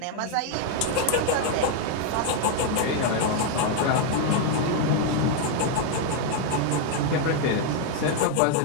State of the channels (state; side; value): different; both; correlation 0.00